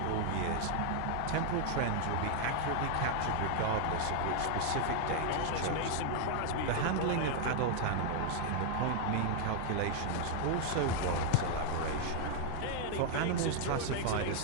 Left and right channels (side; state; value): both; different; correlation 0.00